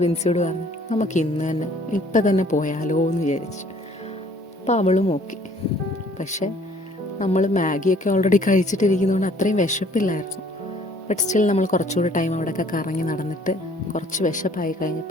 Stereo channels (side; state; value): both; normal; correlation 0.58